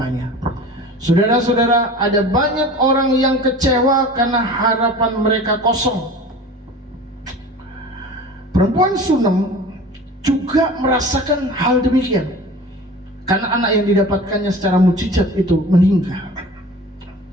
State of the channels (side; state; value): both; normal; correlation 0.39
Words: Saudara-saudara, ada banyak orang yang kecewa karena harapan mereka kosong. Perempuan Sunam juga merasakan hal demikian, karena anak yang didapatkannya secara mujizat itu meninggal.